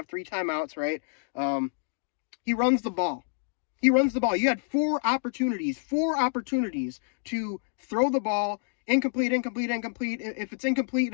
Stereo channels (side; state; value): right; silent; digital silence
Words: 3 timeouts, right? He runs the ball. You had 4 opportunities to throw the ball. Incomplete. If it's incomplete,